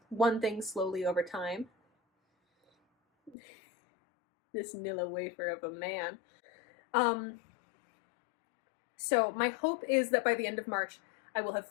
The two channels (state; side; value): drops out; right; at 3.4 s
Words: one thing slowly over time. This Nilla wafer of a man. So my hope is that by the end of March, I will have